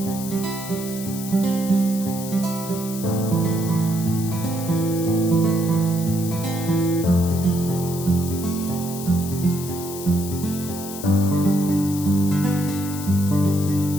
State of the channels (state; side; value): noise; left; hiss, 11 dB below the sound